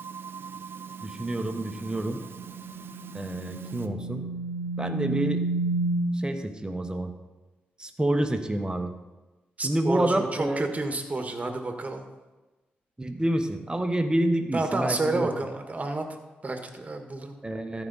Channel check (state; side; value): normal; both; correlation 0.79